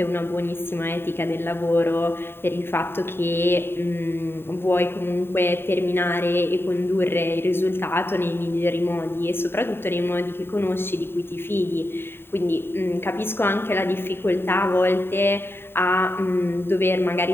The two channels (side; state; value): right; late; 0.11 ms